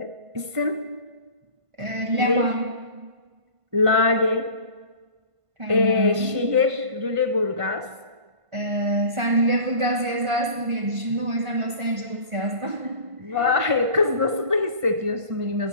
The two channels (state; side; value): late; left; 1.5 ms